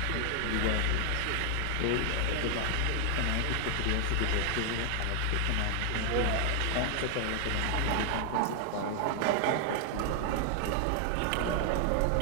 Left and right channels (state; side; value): different; both; correlation 0.00